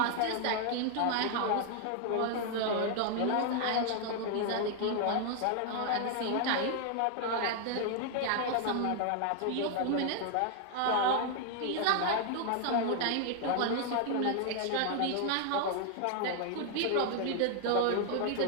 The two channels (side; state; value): both; different; correlation 0.00